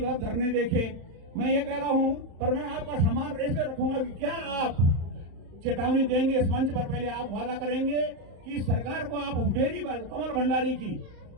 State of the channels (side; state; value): left; late; 36 ms